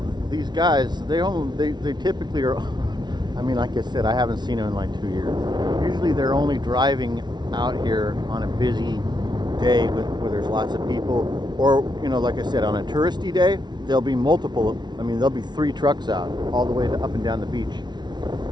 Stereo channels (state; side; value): late; left; 0.20 ms